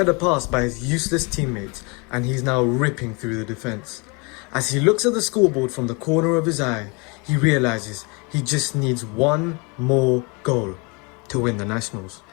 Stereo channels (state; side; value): quieter; right; 30.4 dB